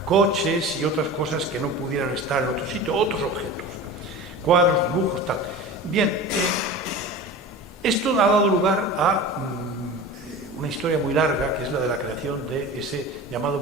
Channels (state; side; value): normal; both; correlation 0.34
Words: coches y otras cosas que no pudieran estar en otro sitio, otros objetos, cuadros, dibujos, tal. Bien, esto ha dado lugar a una historia muy larga, que es la de la creación de ese llamado